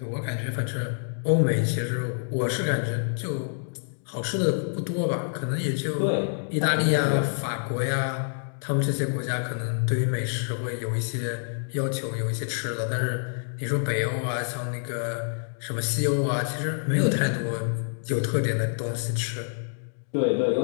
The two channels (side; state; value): right; silent; digital silence